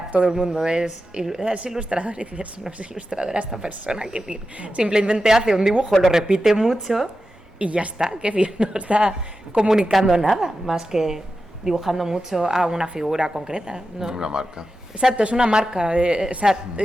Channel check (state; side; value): normal; both; correlation 0.91